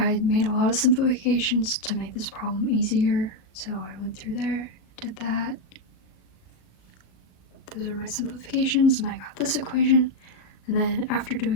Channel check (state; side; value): late; right; 37 ms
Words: made a lot of simplifications to make this problem easier, so I went through there, did that. Those are my simplifications, and I got this equation, and then after